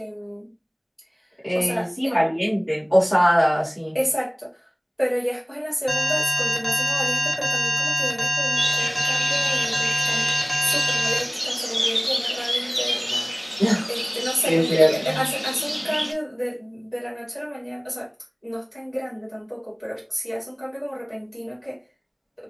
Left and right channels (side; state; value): both; identical; correlation 1.00